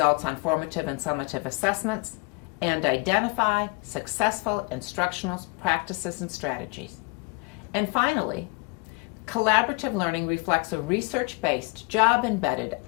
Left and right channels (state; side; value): quieter; right; 31.5 dB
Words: on formative and summative assessments, and identify successful instructional practices and strategies. And finally, collaborative learning reflects a research-based, job-embedded,